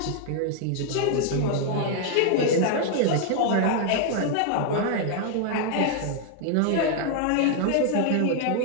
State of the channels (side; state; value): both; different; correlation 0.00